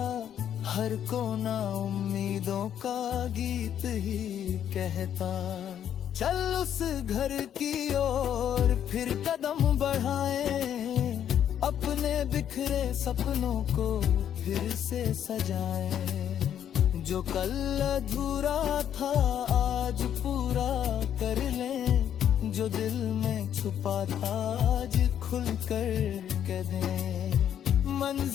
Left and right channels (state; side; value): quieter; right; 9.7 dB